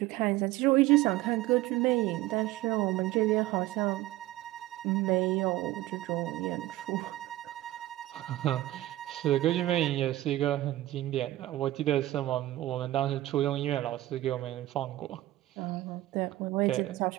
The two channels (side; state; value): left; quieter; 16.2 dB